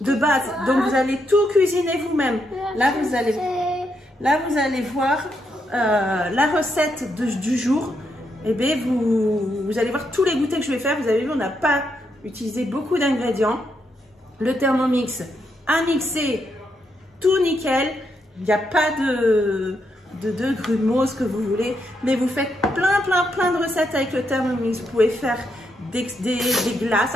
base. Donc vous allez tout cuisiner vous-même. Là vous allez voir la recette du jour. Et bien vous allez voir tous les goûters que je vais faire. Vous avez vu, on n'a pas utilisé beaucoup d'ingrédients. Le Thermomix a mixé tout nickel. Il n'y a pas de grumeaux, ce que vous voulez. Mais vous faites plein de recettes avec le Thermomix. Vous pouvez faire des glaces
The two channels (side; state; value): both; normal; correlation 0.80